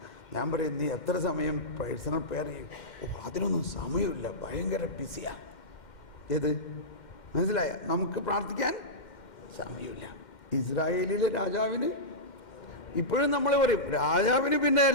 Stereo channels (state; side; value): late; right; 2.1 ms